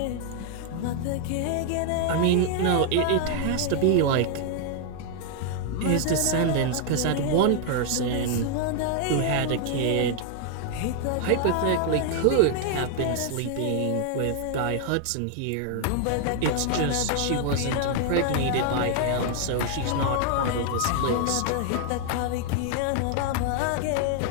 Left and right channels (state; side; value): different; both; correlation 0.00